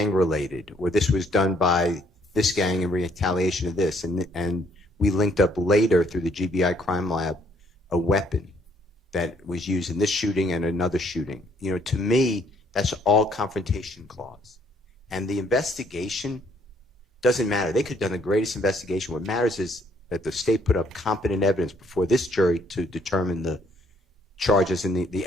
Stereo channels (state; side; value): normal; both; correlation 0.66